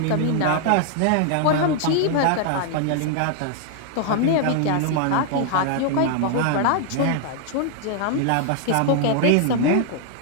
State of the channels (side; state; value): both; different; correlation 0.00